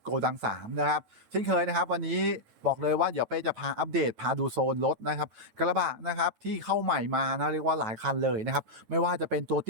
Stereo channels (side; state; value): left; late; 9.1 ms